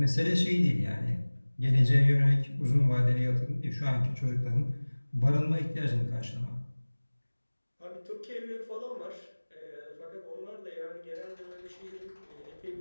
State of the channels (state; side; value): inverted; both; correlation -1.00